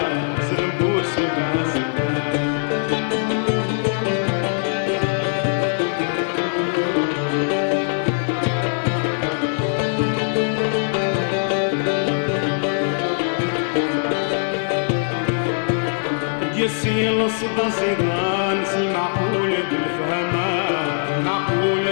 زرم بوس بعسلام يسيل صدا صيغان المعقولة بالفهمان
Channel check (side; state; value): right; silent; 59 dB below the other